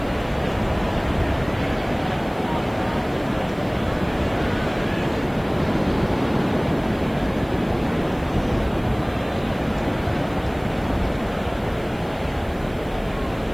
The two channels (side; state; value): right; noise; hiss, 26 dB below the sound